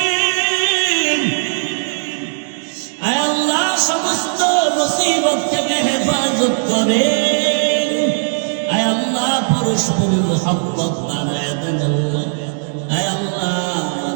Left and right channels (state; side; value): silent; left; digital silence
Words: আয় আল্লাহ, সমস্ত মুসিবত থেকে হেফাজত করেন। আয় আল্লাহ, পরস্পরের মুহাব্বত বাড়ায় দেন আল্লাহ। আয় আল্লাহ,